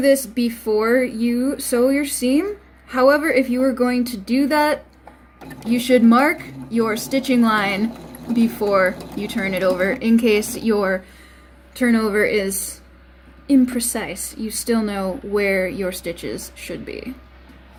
this before you sew your seam. However, if you are going to do that, you should mark your stitching line before you turn it over in case your turnover is imprecise. You still know where your stitches should be.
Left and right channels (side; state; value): both; identical; correlation 1.00